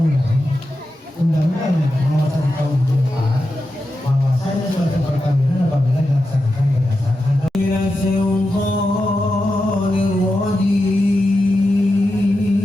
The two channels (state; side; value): normal; both; correlation 0.90